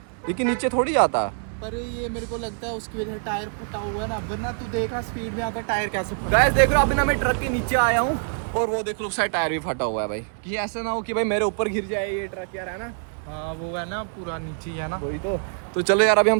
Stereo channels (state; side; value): silent; left; 62 dB below the other